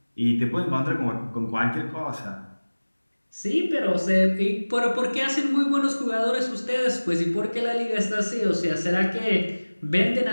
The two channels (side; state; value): both; inverted; correlation -1.00